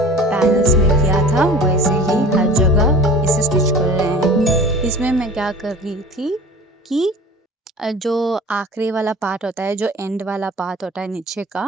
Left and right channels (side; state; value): both; normal; correlation 0.41